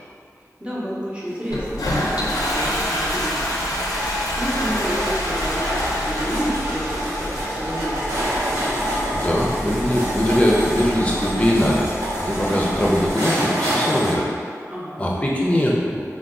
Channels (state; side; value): normal; both; correlation 0.80